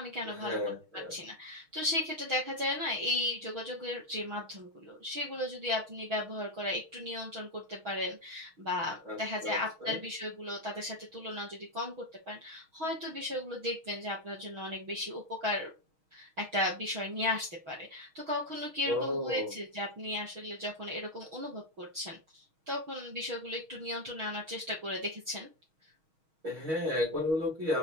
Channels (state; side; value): late; left; 6.3 ms